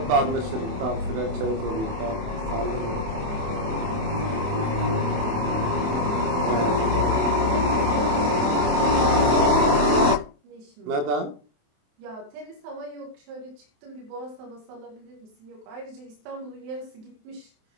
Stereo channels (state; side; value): late; left; 27 ms